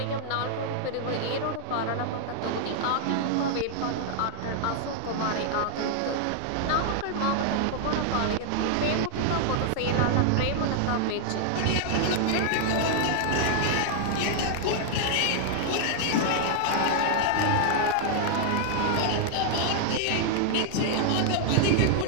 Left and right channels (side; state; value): both; different; correlation 0.00